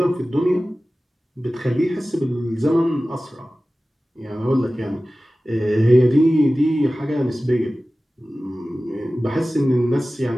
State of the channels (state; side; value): normal; both; correlation 0.96